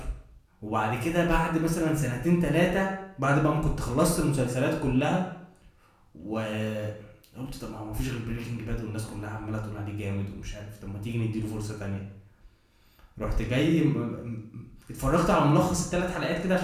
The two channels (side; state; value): both; identical; correlation 1.00